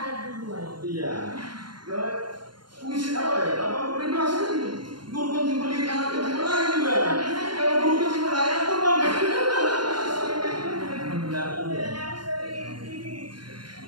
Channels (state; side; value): late; left; 0.72 ms